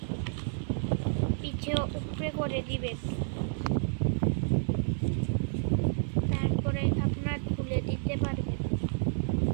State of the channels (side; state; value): left; silent; 58 dB below the other